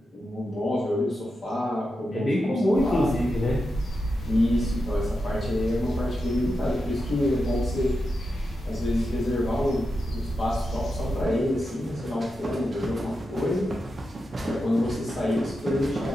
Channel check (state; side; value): normal; both; correlation 0.88